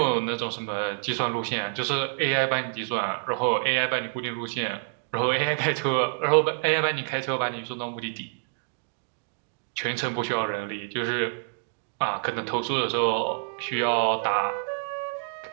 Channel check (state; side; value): silent; left; digital silence